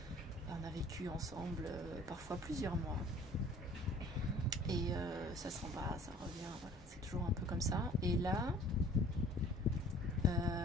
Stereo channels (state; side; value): normal; both; correlation 0.51